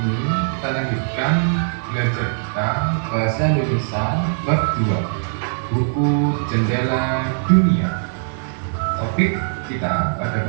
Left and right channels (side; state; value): left; silent; digital silence